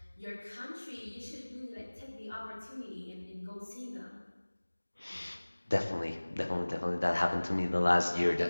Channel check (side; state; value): both; inverted; correlation -1.00